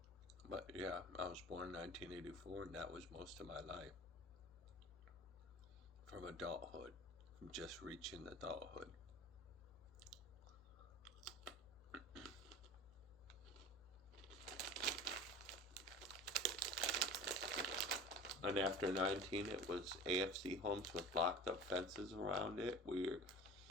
But yeah, I was born in 1984 and that was most of my life. From adulthood, from just reaching adulthood. And after 19, it was AFC homes with locked up fences around it, where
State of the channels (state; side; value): noise; left; hum, 24 dB below the sound